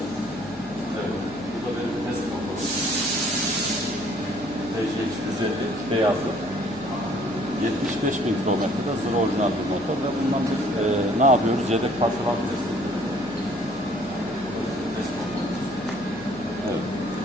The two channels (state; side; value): noise; left; hum, 16 dB below the sound